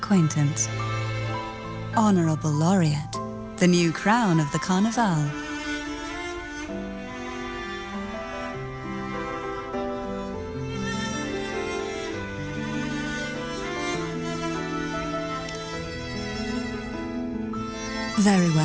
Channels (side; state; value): both; identical; correlation 1.00